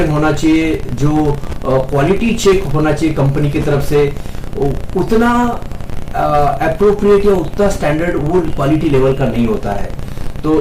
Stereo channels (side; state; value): both; identical; correlation 1.00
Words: होना चाहिए, जो क्वालिटी चेक होना चाहिए कंपनी की तरफ से, उतना अप्रोप्रिएट या उतना स्टैंडर्ड वो क्वालिटी लेवल का नहीं होता है।